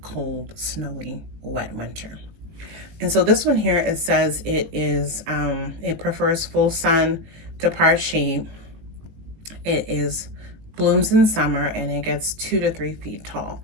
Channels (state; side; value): late; left; 19 ms